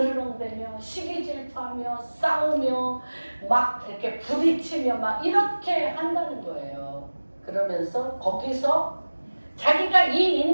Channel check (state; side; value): inverted; both; correlation -1.00